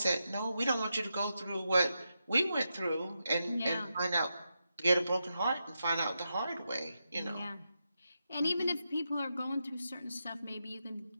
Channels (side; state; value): both; inverted; correlation -0.87